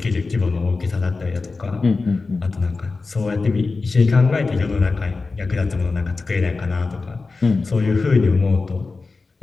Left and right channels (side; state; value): right; quieter; 3.9 dB